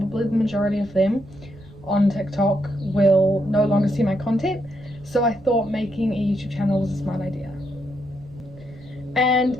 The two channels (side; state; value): right; noise; rumble, 21 dB below the sound